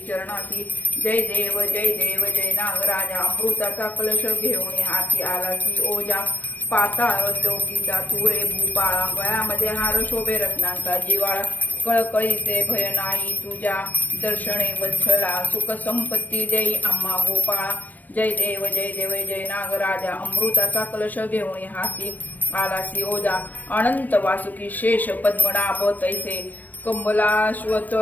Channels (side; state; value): right; late; 0.086 ms